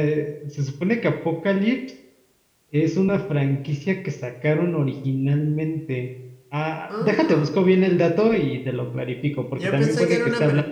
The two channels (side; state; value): both; identical; correlation 1.00